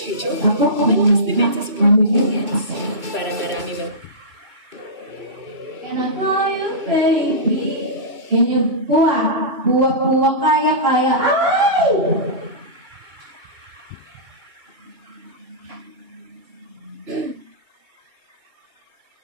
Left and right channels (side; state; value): left; late; 3.0 ms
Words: Tree Choco. Ako, Malakas depensa sa performance. Para marami mag... Can I call you baby? Can you puwa? Puwa, kaya. Ay!